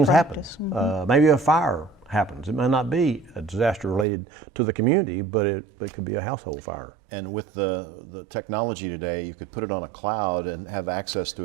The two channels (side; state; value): left; drops out; at 4.0 s